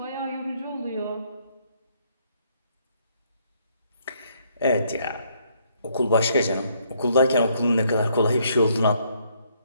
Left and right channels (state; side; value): inverted; both; correlation -0.70